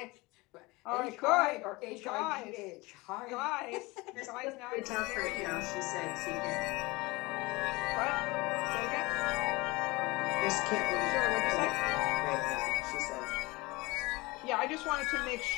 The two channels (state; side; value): quieter; right; 23.2 dB